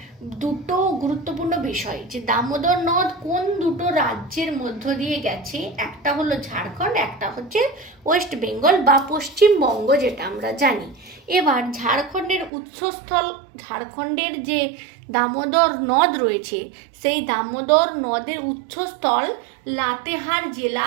দুটো গুরুত্বপূর্ণ বিষয়, যে দামোদর নদ কোন দুটো রাজ্যের মধ্য দিয়ে গেছে, একটা হলো ঝাড়খণ্ড, একটা হচ্ছে ওয়েস্ট বেঙ্গল বা পশ্চিমবঙ্গ যেটা আমরা জানি। এবার ঝাড়খণ্ডের উৎসস্থল, ঝাড়খণ্ডের যে দামোদর নদ রয়েছে সেই দামোদর নদের উৎসস্থল লাতেহার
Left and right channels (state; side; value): drops out; left; at 12.5 s